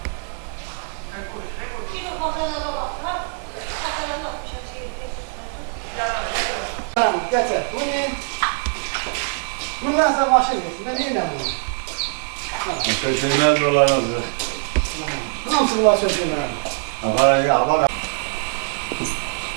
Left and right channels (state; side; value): silent; left; 57 dB below the other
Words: Bundan sonra başını yesin. Ben yine bunu. Köşeler dolanırdı. Nasıl bunlar sözüm ben? Nereye?